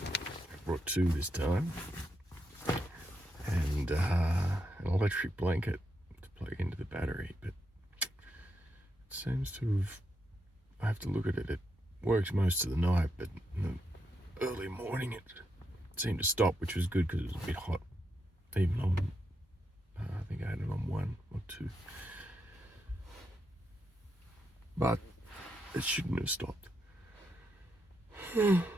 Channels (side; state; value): both; normal; correlation 0.82